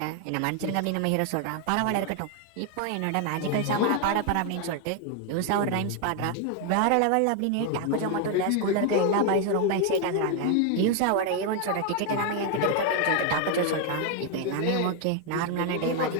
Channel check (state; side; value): different; both; correlation 0.01